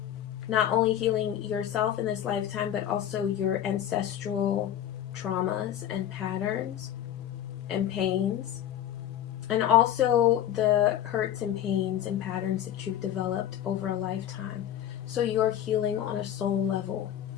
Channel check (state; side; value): quieter; right; 11.0 dB